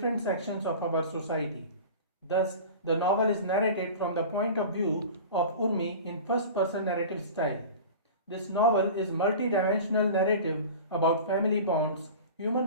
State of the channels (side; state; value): both; inverted; correlation -0.36